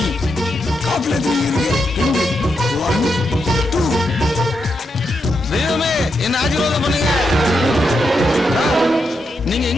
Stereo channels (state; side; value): normal; both; correlation 0.84